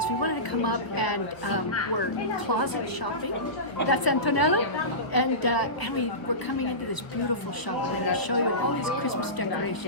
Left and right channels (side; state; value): right; late; 1.3 ms